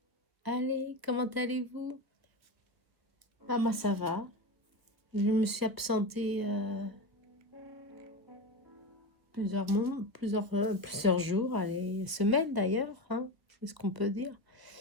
allez, comment allez-vous? Ah, moi ça va. Je me suis absentée plusieurs jours, allez, semaines d'ailleurs, hein, c'est ce qu'on peut dire,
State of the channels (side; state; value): left; late; 1.2 ms